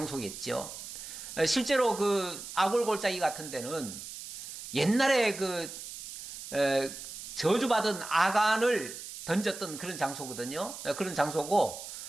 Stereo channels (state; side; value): noise; right; hiss, 11 dB below the sound